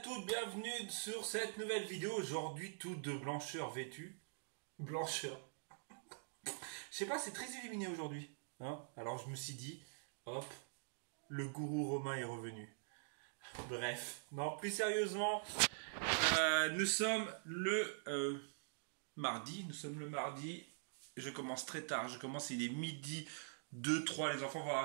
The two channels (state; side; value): silent; left; digital silence